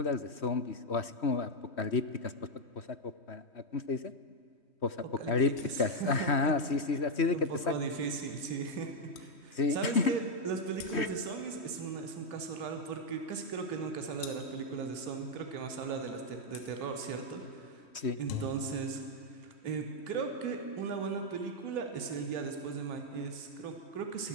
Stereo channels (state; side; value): late; right; 3.1 ms